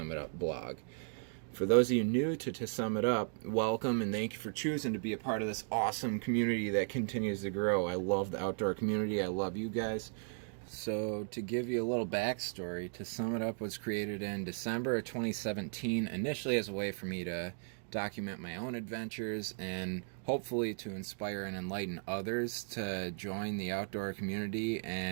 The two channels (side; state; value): left; silent; 54 dB below the other